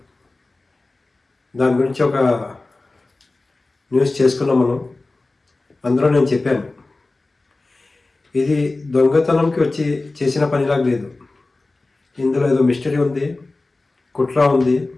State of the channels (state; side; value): quieter; right; 3.2 dB